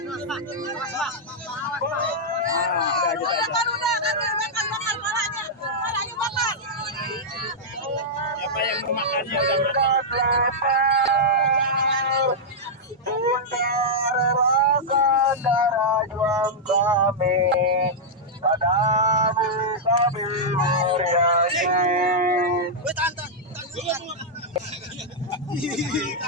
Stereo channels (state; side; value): normal; both; correlation -0.07